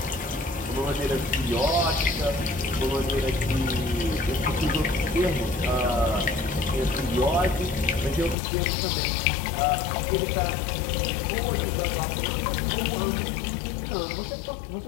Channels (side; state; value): right; drops out; at 8.3 s